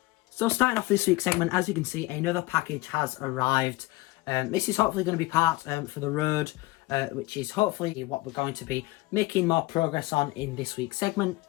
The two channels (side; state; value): right; quieter; 20.2 dB